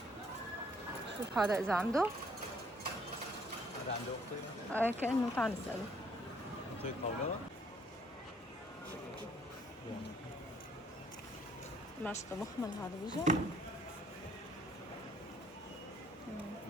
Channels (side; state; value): both; normal; correlation 0.63